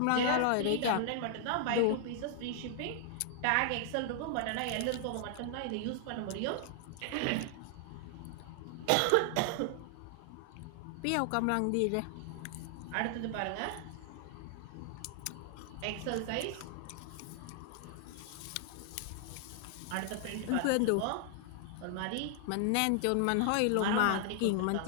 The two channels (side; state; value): both; different; correlation 0.00